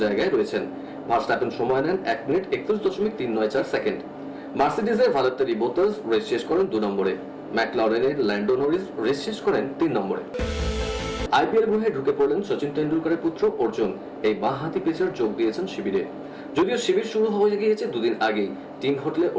জায়গায় রয়েছেন। ভার্স্ট্যাপেন সময় নেন 1 মিনিট 31.394 সেকেন্ড। মার্সিডিজের ভালেত্তেরি বোতাস রেস শেষ করেন 2 নম্বরে। ম্যাকলারেনের ল্যান্ডো নরিস রেস শেষ করেন 3 নম্বরে। আইপিএল গ্রহে ঢুকে পড়লেন সচিন তেন্ডুলকরের পুত্র অর্জুন। এই বাঁহাতি পেসার যোগ দিয়েছেন শিবিরে। যদিও শিবির শুরু হয়ে গিয়েছে 2 দিন আগেই। টিম হোটেলে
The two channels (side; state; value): both; identical; correlation 1.00